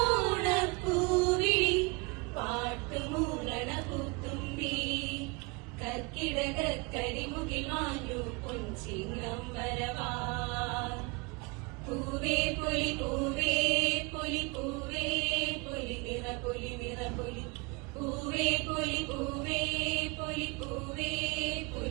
ഓണപ്പൂവിളി പാട്ടുമൂളണ പൂത്തുമ്പി കർക്കിടക കരിമുകിൽ മാഞ്ഞു പൊൻചിങ്ങം വരവാൻ പൂവേ പൊലി പൂവേ പൊലി പൂവേ പൊലി നിറ പൊലി നിറ പൊലി പൂവേ പൊലി പൂവേ പൊലി പൂവേ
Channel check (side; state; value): left; quieter; 28.3 dB